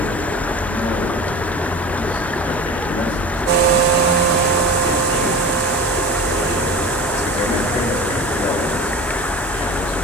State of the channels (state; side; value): normal; both; correlation 0.35